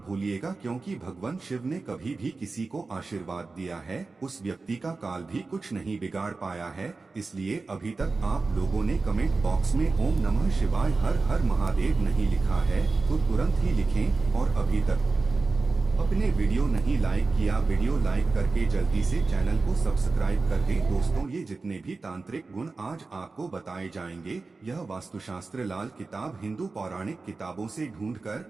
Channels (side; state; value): left; quieter; 3.9 dB